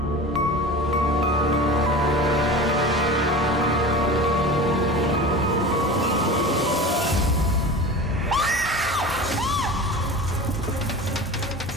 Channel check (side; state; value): both; normal; correlation 0.33